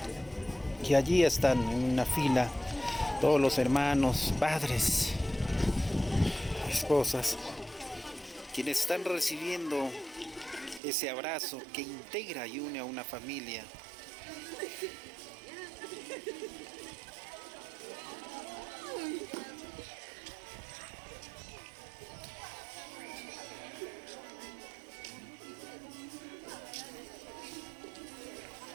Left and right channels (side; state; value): left; drops out; at 10.8 s